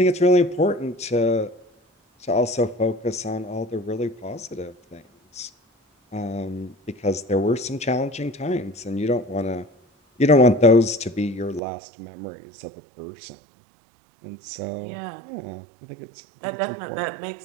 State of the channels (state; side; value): drops out; left; at 11.6 s